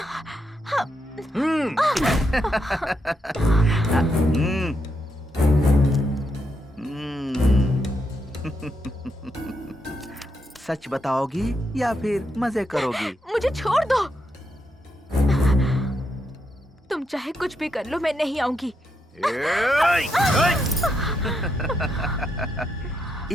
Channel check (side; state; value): both; normal; correlation 0.81